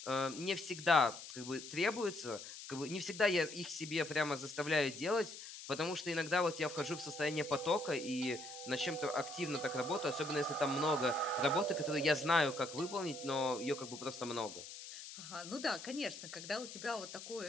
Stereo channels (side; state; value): left; noise; hiss, 12 dB below the sound